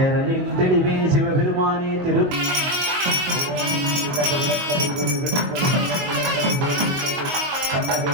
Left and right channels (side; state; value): left; late; 22 ms